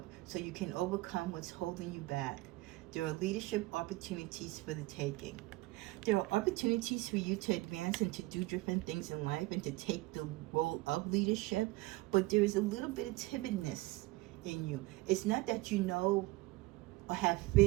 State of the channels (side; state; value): left; quieter; 20.9 dB